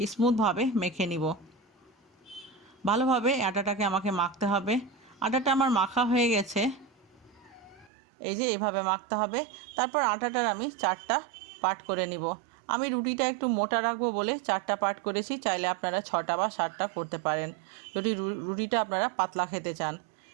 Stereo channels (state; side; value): drops out; left; at 7.9 s